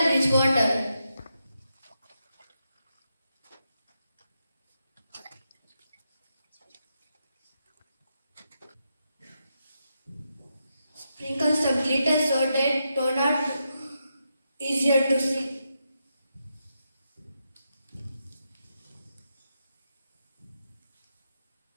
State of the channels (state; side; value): inverted; both; correlation -0.85